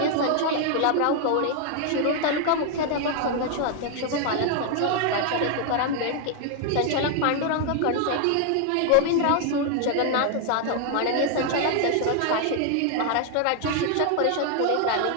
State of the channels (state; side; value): different; both; correlation 0.00